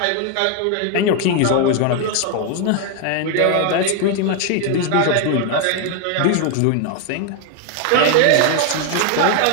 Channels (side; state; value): both; different; correlation 0.00